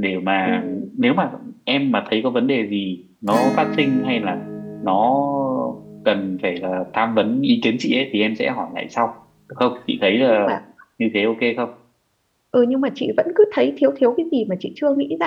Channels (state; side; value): identical; both; correlation 1.00